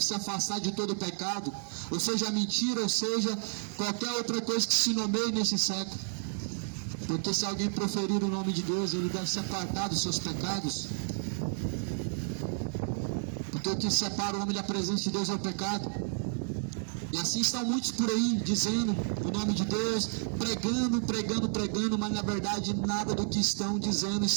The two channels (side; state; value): left; silent; digital silence